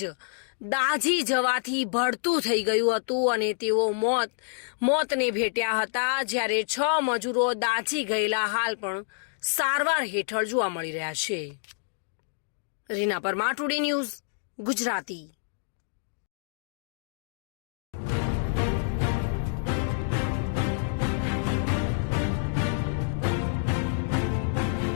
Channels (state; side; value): silent; right; digital silence